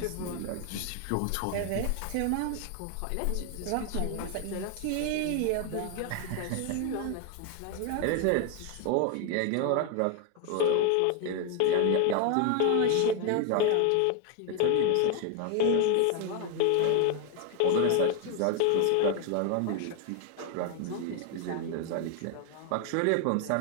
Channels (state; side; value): different; both; correlation 0.01